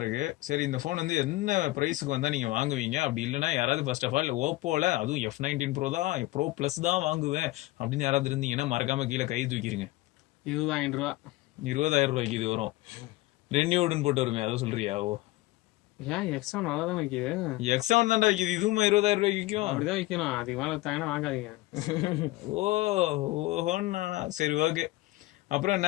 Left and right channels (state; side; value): quieter; right; 19.1 dB